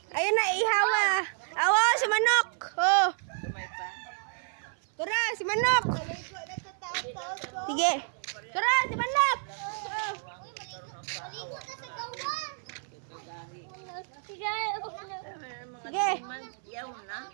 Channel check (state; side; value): silent; left; 58 dB below the other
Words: Ayun na ihawa. Awa si manok. Oh. Tura si manok. Sige. Tura si manok. Oh. Sige.